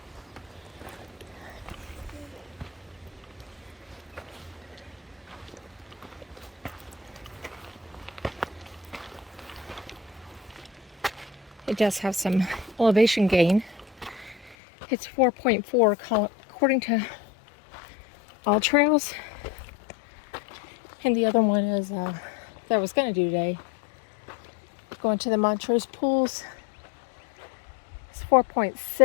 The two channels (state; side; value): drops out; right; at 14.6 s